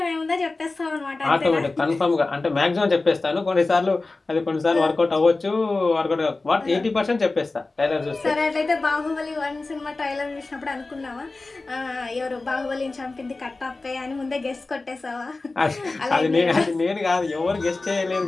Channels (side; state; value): right; quieter; 3.4 dB